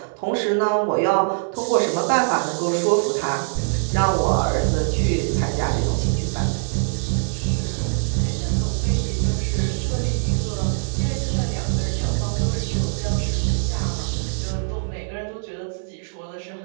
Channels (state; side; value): silent; left; digital silence